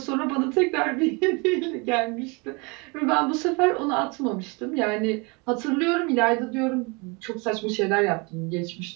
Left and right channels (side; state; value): left; quieter; 29.5 dB